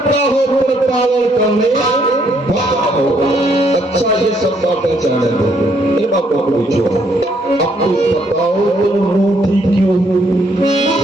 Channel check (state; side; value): normal; both; correlation 0.70